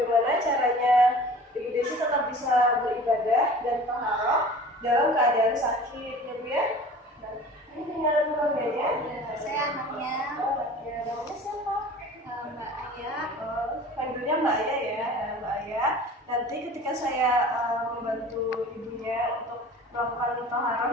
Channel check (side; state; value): both; normal; correlation 0.42